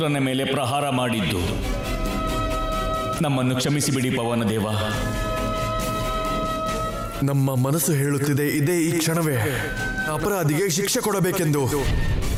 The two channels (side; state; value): both; identical; correlation 1.00